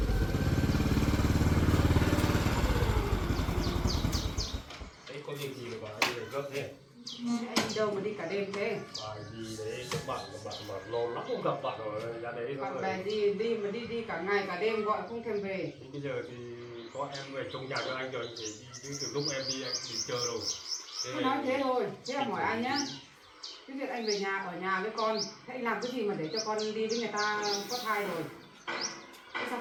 Đấy có việc gì mà anh lại gấp thế? Anh đi đâu mà đi cả đêm thế? Bài gì đấy các bạn mà lâu lắm không gặp bạn rồi ra đấy Bạn rồi. bè đi mà đi cả ngày cả đêm gọi không thèm về. Thì bây giờ thì có em về trong nhà cho anh rồi, anh phải đi chứ từ lúc em đi anh thì chờ rồi. Tôi nói thế thôi, thế là hỏi anh nhá. Cái việc anh về nhà ở nhà với con, thế anh làm cái gì mà để cho con đi với người ta có thai rồi? Thế sao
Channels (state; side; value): identical; both; correlation 1.00